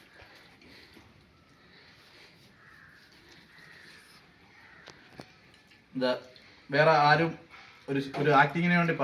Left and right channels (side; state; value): both; identical; correlation 1.00